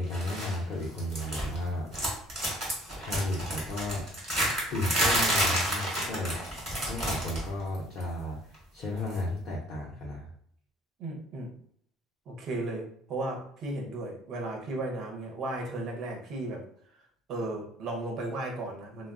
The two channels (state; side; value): normal; both; correlation 0.56